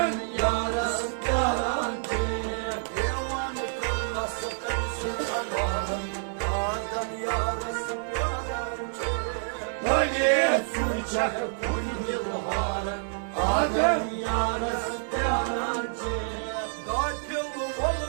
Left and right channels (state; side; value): silent; left; 59 dB below the other